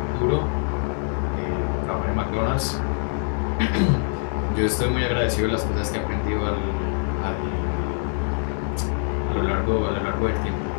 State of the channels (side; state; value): right; silent; 62 dB below the other